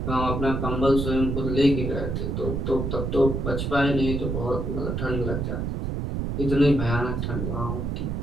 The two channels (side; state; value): right; noise; rumble, 2 dB below the sound